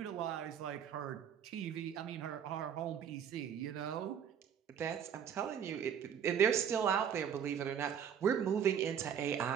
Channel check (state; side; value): quieter; left; 8.2 dB